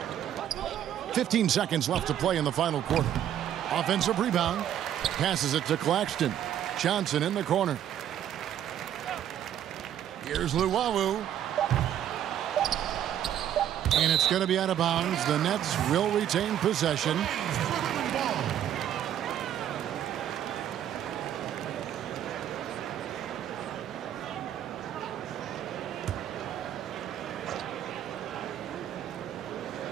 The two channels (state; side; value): quieter; left; 10.6 dB